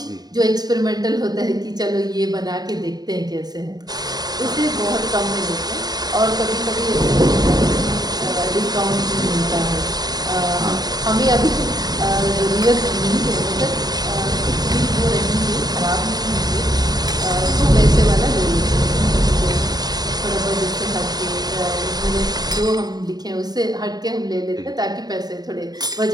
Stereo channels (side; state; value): left; late; 0.19 ms